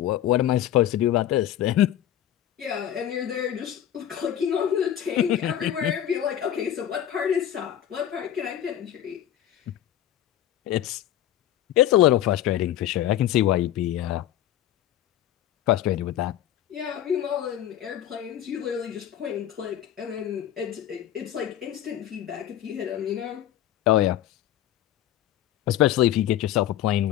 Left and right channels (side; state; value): right; quieter; 11.7 dB